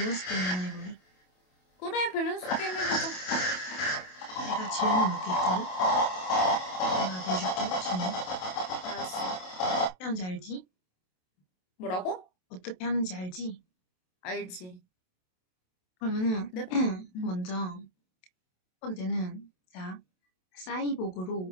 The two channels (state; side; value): late; right; 27 ms